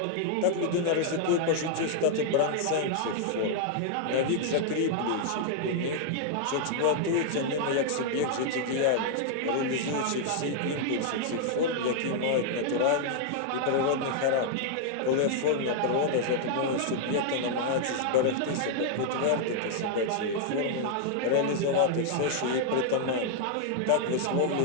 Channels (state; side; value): different; both; correlation -0.01